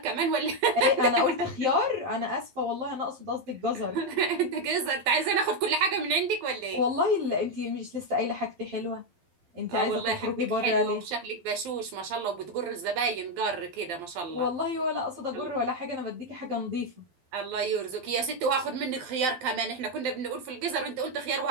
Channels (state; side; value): late; left; 12 ms